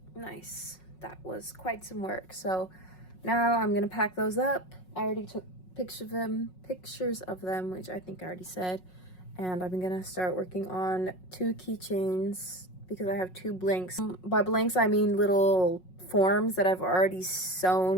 Nice. That was quite some work. So now I'm gonna pack those up. I already took pictures of them, which I think I already said. And I'm gonna start working on 2 keychains because I have 2 blanks. By blanks, I mean little forms that I've already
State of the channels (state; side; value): late; right; 5.5 ms